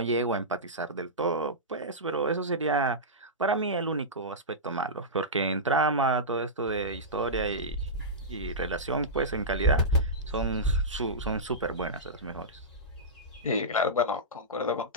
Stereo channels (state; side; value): normal; both; correlation -0.15